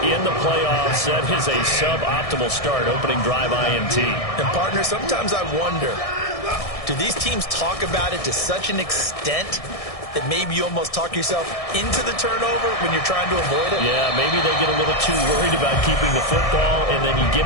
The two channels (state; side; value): late; right; 1.6 ms